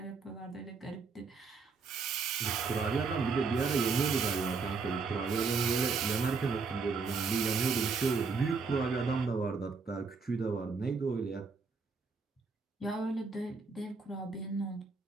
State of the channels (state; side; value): quieter; left; 4.8 dB